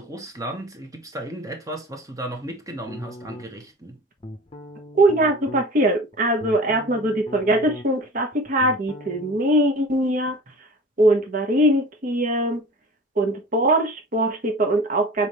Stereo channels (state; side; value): normal; both; correlation 0.40